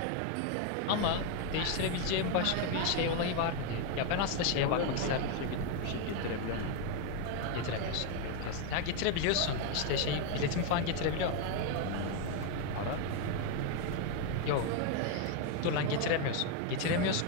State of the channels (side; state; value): both; different; correlation 0.01